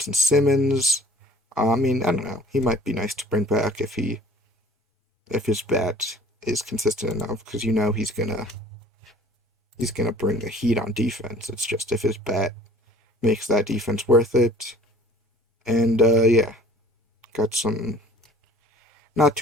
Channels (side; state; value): both; normal; correlation 0.51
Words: Simmons, I mean, I don't know. He might be nice to bring back if his bat is consistent enough, because he's gonna bring the heat on defense. It's just if his bat makes that defense worth it. And yeah, got some not